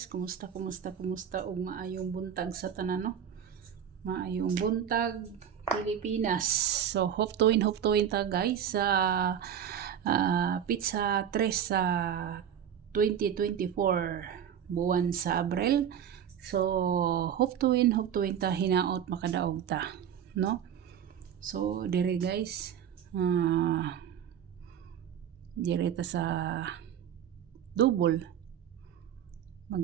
kumusta ug maayong buntag sa tanan no? Maayong buntag Pilipinas. So hope to win ta guys sa pizza 3 sa 2024 buwan sa Abril. So hope to win ta hinaot makadaog ta, no? So dire guys, dire ta sa double,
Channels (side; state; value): left; quieter; 9.0 dB